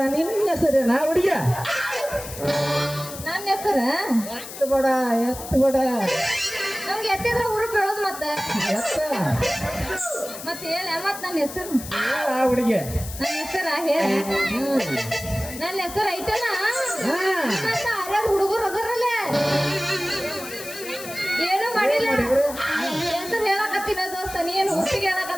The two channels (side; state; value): left; noise; hiss, 12 dB below the sound